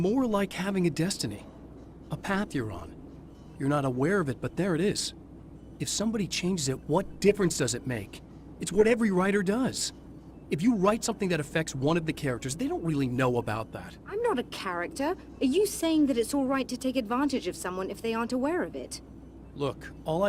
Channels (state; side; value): identical; both; correlation 1.00